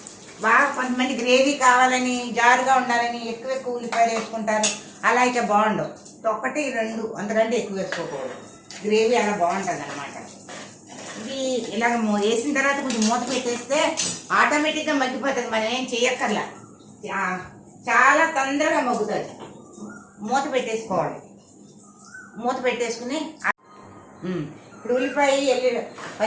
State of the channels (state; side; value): identical; both; correlation 1.00